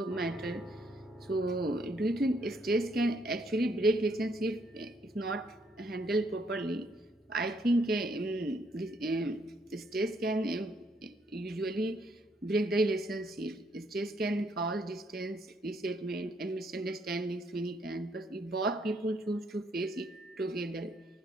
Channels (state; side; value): normal; both; correlation 0.71